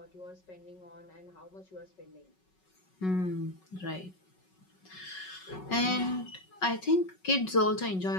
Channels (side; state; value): right; late; 5.4 ms